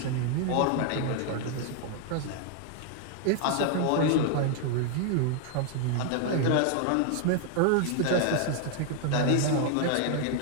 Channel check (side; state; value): both; different; correlation 0.00